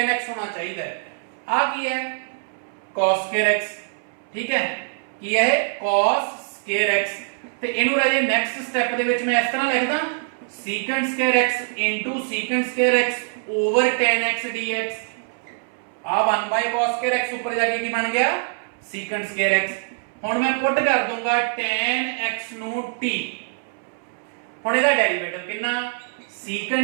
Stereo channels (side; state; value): left; silent; 63 dB below the other